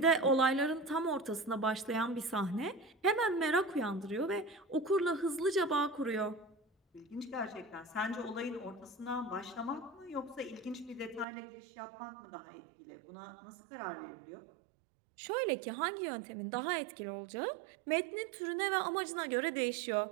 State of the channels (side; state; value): left; drops out; at 11.2 s